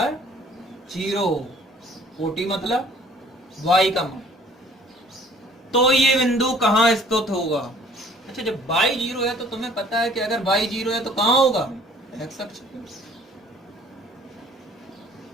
0, कोटि मतलब y का मान, तो ये बिंदु कहां स्थित होगा? अच्छा, जब y 0 है तो तुम्हें पता है कि अगर y 0 है तो कहां होगा? x अक्ष पे।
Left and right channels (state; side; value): normal; both; correlation 0.55